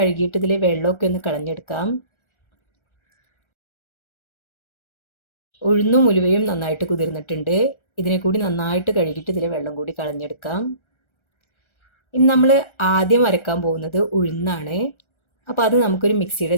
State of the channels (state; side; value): late; right; 1.3 ms